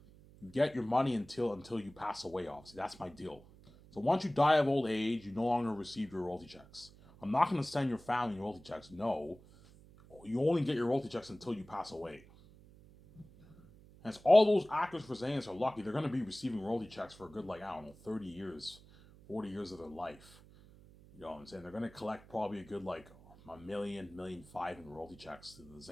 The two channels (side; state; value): right; noise; hum, 22 dB below the sound